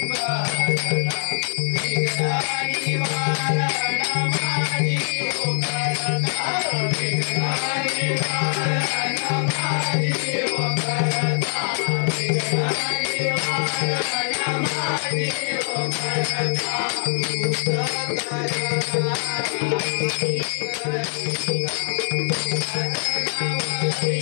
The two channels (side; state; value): right; silent; 63 dB below the other